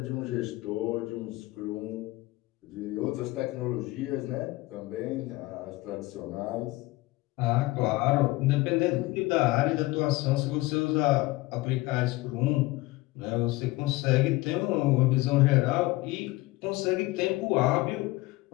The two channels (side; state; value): right; quieter; 20.3 dB